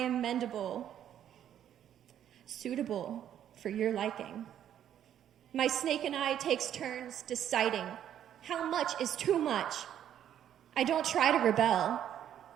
mendable, suitable for your liking. My snake and I takes turns deciding how much is too much. I don't try to rebel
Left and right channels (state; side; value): quieter; left; 10.3 dB